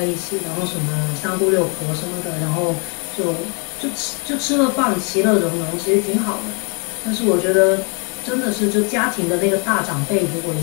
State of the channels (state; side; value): quieter; right; 35.0 dB